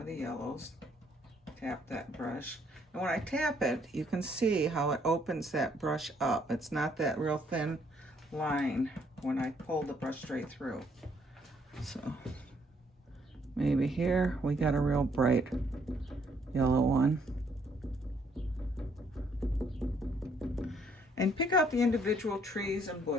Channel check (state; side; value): normal; both; correlation 0.68